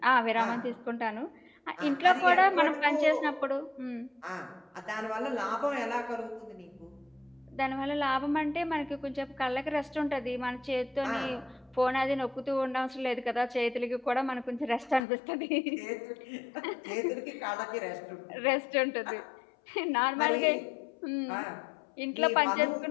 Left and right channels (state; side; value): drops out; right; at 15.0 s